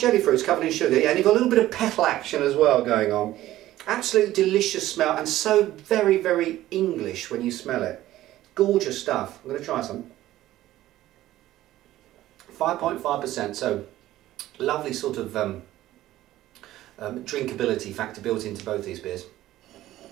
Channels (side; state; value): left; quieter; 14.8 dB